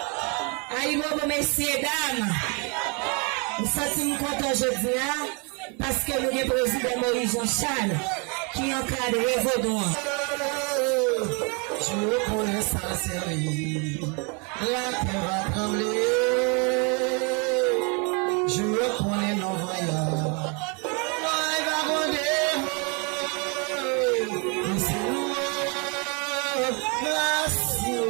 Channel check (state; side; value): quieter; left; 33.6 dB